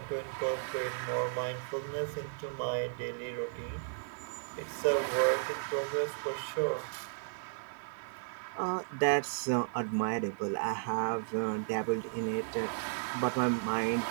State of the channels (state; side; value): silent; left; digital silence